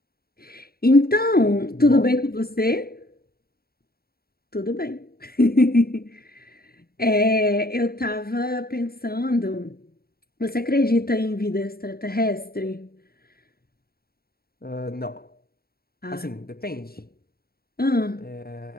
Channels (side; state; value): right; late; 0.44 ms